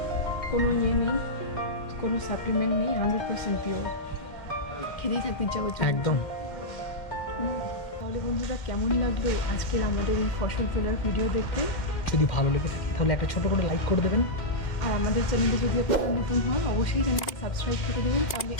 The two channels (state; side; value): late; right; 2.1 ms